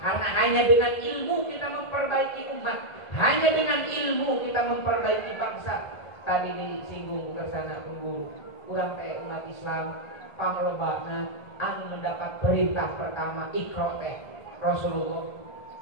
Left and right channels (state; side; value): late; right; 1.8 ms